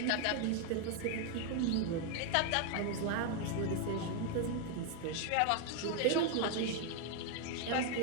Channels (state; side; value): different; both; correlation 0.01